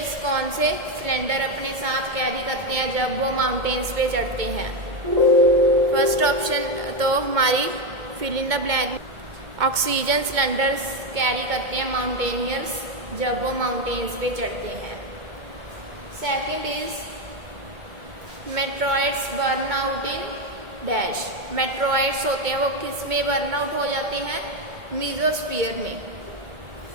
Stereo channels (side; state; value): left; late; 2.2 ms